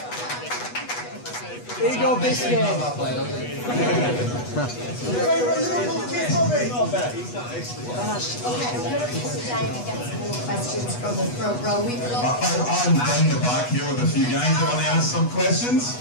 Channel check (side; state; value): right; late; 8.2 ms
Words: Here you go, Biscuit. Favourite Liverpool kid, Robbie? Not bad. Okay, I'm going to come down and get some more questions from the front row. We've lost. I'm in the back here with a few guys who want to ask some questions.